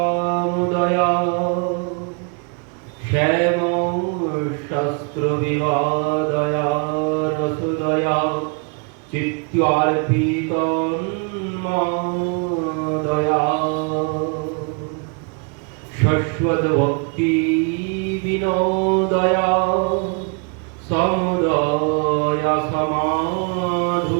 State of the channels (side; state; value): left; quieter; 36.4 dB